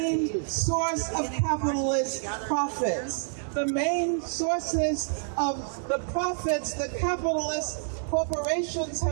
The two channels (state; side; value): silent; left; digital silence